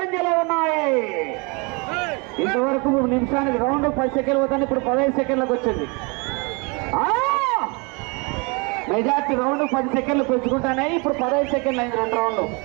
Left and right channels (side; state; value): left; quieter; 30.4 dB